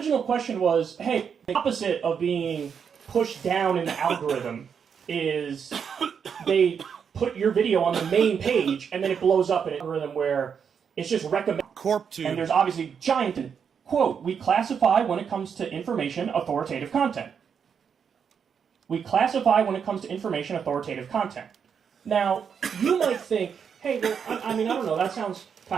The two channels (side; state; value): left; quieter; 7.0 dB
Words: question was, hey, the opposite of being pushed down in the algorithm is they put your video on the main page and then it blows up in an algorithm where it's just recommended. Corp tube. And there's obviously giant, quote, we classify when it comes to information authoritative content. We classify when it comes to information authoritative content. Now, you might think, hey, well, I mean, I don't know, that sounds